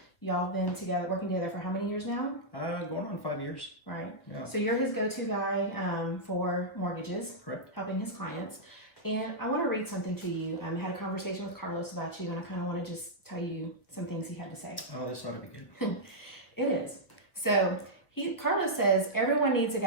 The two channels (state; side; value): late; right; 1.1 ms